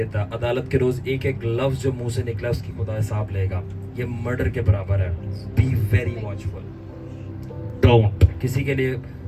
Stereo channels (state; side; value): identical; both; correlation 1.00